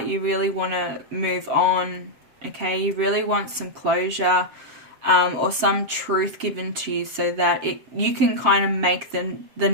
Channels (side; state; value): left; late; 7.5 ms